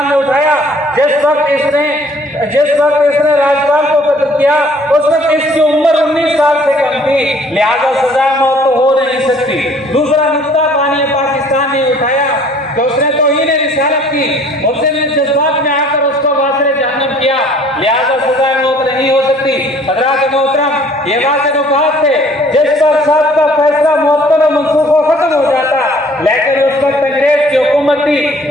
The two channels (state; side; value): normal; both; correlation 0.56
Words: ने उठाया, जिस वक्त इसने राज्यपाल को कत्ल किया उस वक्त इसकी उम्र 19 साल से कम थी, लिहाजा सजा मौत तो हो नहीं सकती। दूसरा नुक्ता बानी पाकिस्तान ने उठाया कि उसने तौहीन रिसालत की, उसने जज्बात में आकर उसको वासिल जहन्नम किया, लिहाजा सजा मौत नहीं हो सकती। हजरात मोहतरम, ये वाज़े नुकात थे जिस पर साहब का फैसला मुअत्तल और मनसूख खत्म हो जाता, लेकिन उस वक्त अंग्रेज की हुकूमत थी,